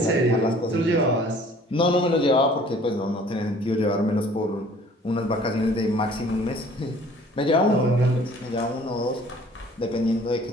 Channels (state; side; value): normal; both; correlation 0.53